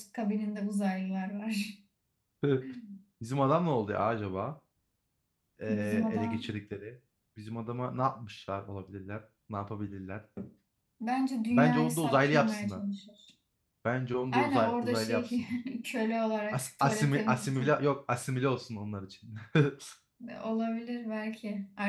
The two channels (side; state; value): both; identical; correlation 1.00